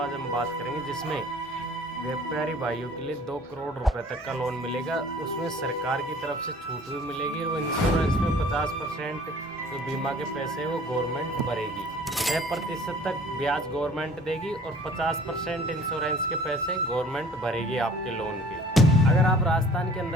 हम बात करेंगे, जिसमें व्यापारी भाइयों के लिए 2 करोड़ रुपए तक का लोन मिलेगा। उसमें सरकार की तरफ से छूट भी मिलेगी और इंश्योरेंस में 50% जो बीमा के पैसे हैं वो गवर्नमेंट भरेगी। 6% तक ब्याज गवर्नमेंट देगी और 50% इंश्योरेंस के पैसे गवर्नमेंट भरेगी आपके लोन के। अगर आप राजस्थान के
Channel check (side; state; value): both; normal; correlation 0.50